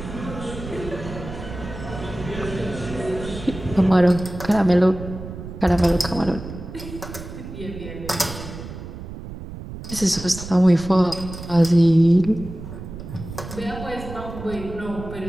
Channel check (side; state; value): right; noise; rumble, 11 dB below the sound